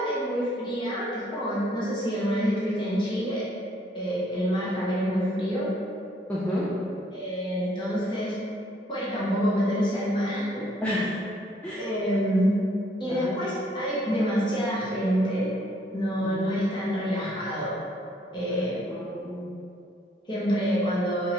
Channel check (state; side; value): normal; both; correlation 0.65